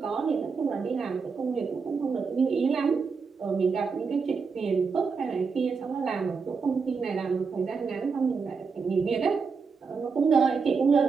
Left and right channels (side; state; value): left; quieter; 5.2 dB